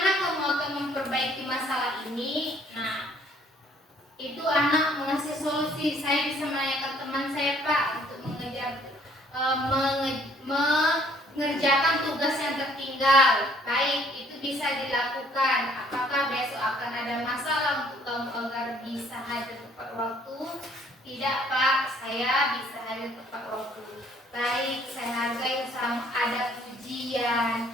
kamu akan memperbaiki masalah ini? Nah, itu anak mengasih solusi. Saya bisa menanyakan teman saya Pak untuk mengerjakan tugas yang tertinggal. Baik, itu bisa dilakukan. Apakah besok akan ada masalah untuk kamu agar bisa hadir tepat waktu? Tidak Pak, saya bisa hadir tepat waktu. Baik, saya hargai usaha. Ada pujian,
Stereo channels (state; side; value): normal; both; correlation 0.61